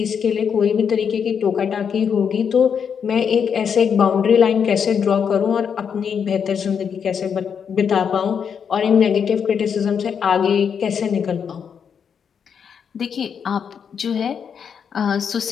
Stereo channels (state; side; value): quieter; right; 7.1 dB